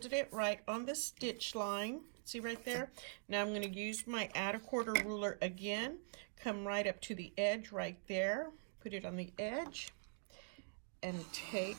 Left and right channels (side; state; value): left; silent; digital silence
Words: it right on the stitch line. See right there? Now I'm going to use my add a quarter ruler again. Come right up to the edge right there. Put it on the edge. And take